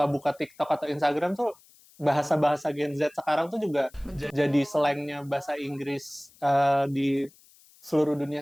buka TikTok atau Instagram tuh bahasa-bahasa Gen Z sekarang tuh juga jadi slangnya bahasa Inggris di seluruh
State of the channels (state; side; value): noise; left; hiss, 27 dB below the sound